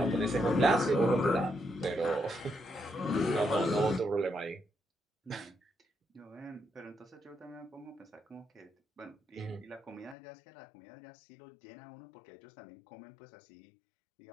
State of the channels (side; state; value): right; drops out; at 10.2 s